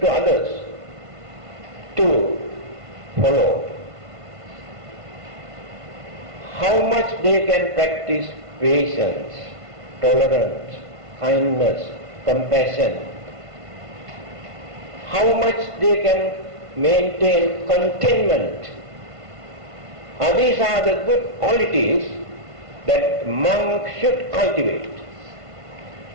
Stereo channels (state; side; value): late; left; 1.5 ms